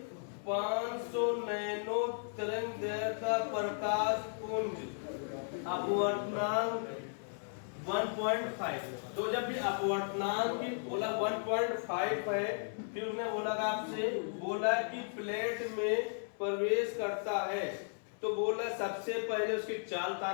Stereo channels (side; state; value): right; silent; 54 dB below the other